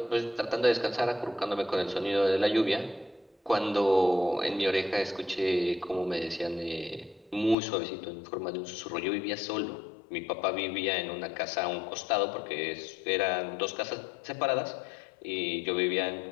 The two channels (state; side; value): drops out; right; at 7.6 s